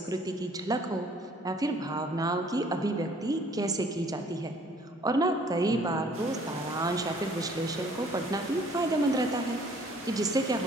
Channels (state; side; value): normal; both; correlation 0.57